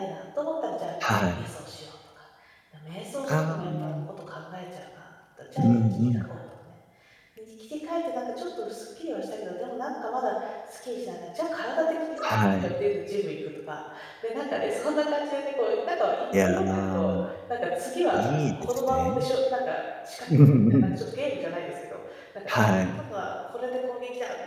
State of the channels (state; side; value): identical; both; correlation 1.00